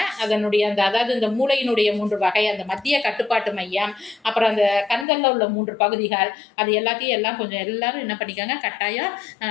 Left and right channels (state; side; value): drops out; right; at 5.1 s